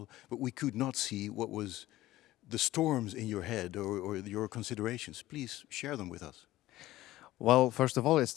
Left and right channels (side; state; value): right; quieter; 16.0 dB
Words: but we could not see what was the storms in your head or your considerations. Please share them with us. Well, first of all, it's